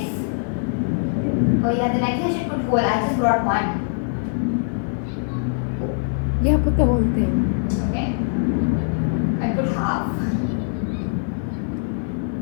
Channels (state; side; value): silent; right; 64 dB below the other